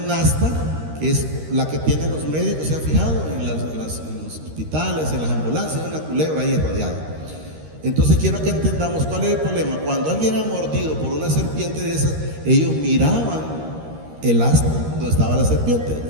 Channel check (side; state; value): left; late; 13 ms